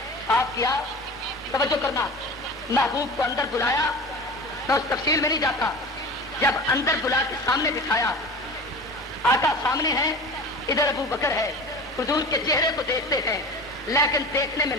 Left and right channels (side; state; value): both; normal; correlation 0.35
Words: صاف کیا, توجہ کرنا, محبوب کو اندر بلایا. میں اس تفصیل میں نہیں جاتا. جب اندر بلا کے سامنے بٹھایا, آقا سامنے ہے, ادھر ابو بکر ہے. حضور کے چہرے کو دیکھتے ہیں لیکن دیکھنے میں